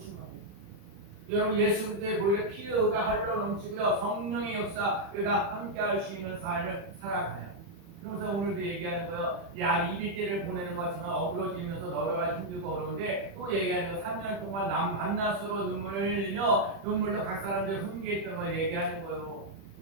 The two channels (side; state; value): left; late; 31 ms